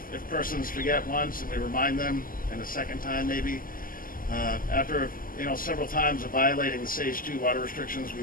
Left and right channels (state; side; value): late; right; 0.41 ms